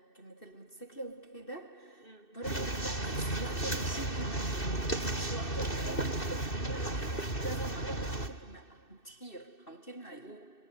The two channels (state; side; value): late; right; 2.6 ms